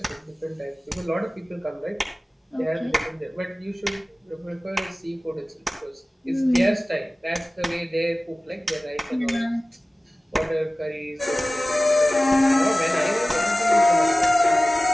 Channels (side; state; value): both; normal; correlation 0.96